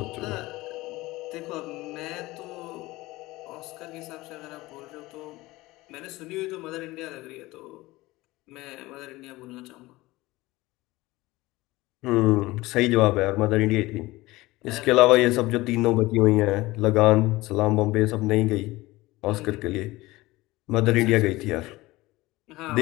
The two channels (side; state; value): right; quieter; 19.6 dB